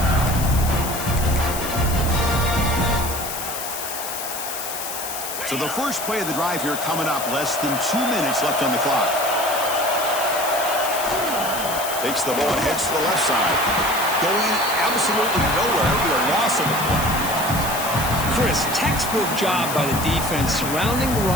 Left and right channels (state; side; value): noise; left; hiss, 6 dB below the sound